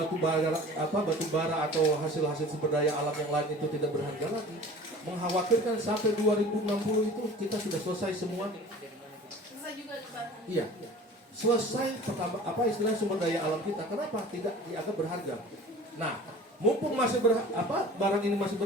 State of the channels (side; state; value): both; normal; correlation 0.42